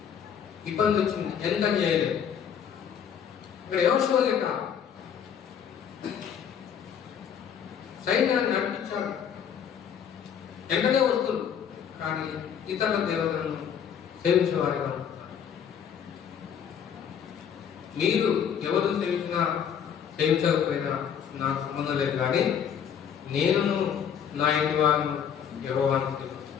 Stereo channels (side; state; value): right; quieter; 8.1 dB